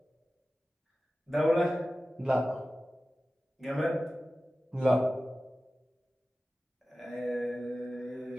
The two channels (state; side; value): normal; both; correlation 0.95